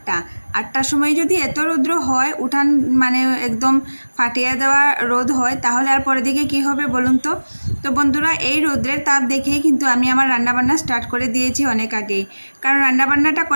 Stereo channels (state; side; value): inverted; both; correlation -1.00